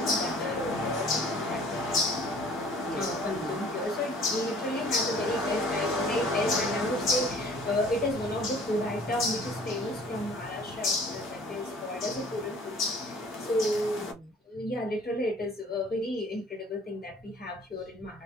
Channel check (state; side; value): normal; both; correlation 0.51